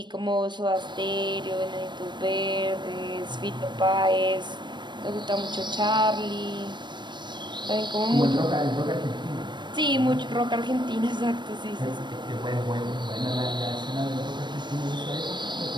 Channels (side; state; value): left; late; 0.22 ms